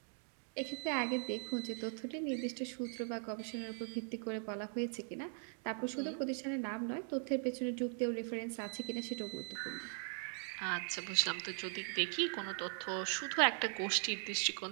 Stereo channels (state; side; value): silent; left; 51 dB below the other